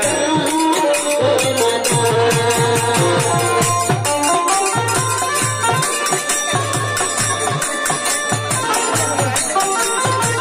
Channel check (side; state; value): both; identical; correlation 1.00